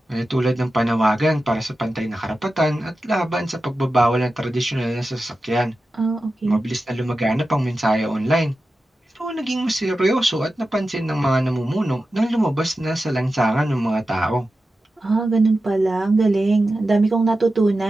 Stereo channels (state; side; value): normal; both; correlation 0.92